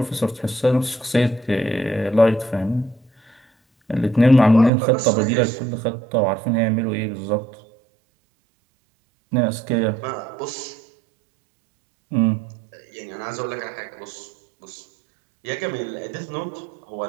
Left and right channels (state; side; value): drops out; left; at 4.7 s